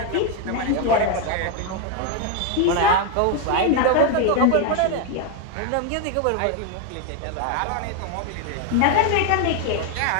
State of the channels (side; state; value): both; different; correlation 0.02